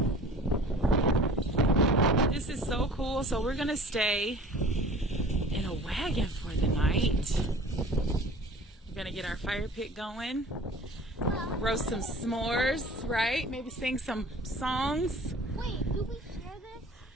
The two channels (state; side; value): normal; both; correlation 0.45